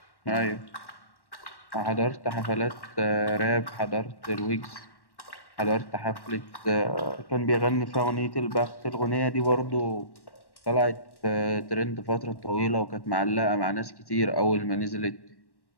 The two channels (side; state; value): right; late; 1.1 ms